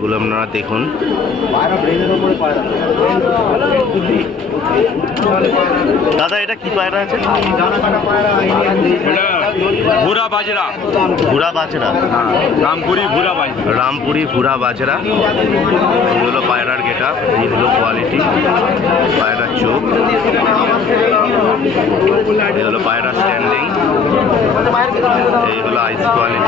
আপনারা দেখুন। দাদা এটা কি পায়রা আছে? ভুরা বাজরা, ভুরা বাজরা, রামপুরি ভুরা বাজরা, রামপুরি ভুরা বাজরা। এই হলো পায়রার গেটা, এই হলো কোয়ালিটি পায়রার চোখ, এই হলো পায়রা স্ট্যান্ডিং, এই হলো আইস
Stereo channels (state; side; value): quieter; right; 5.2 dB